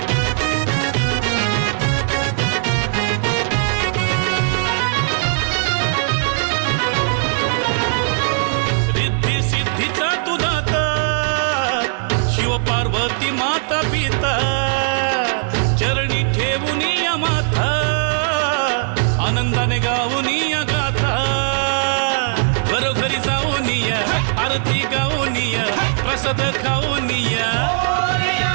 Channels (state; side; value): silent; left; 67 dB below the other